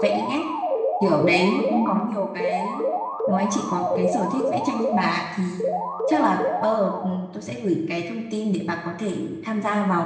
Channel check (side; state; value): both; identical; correlation 1.00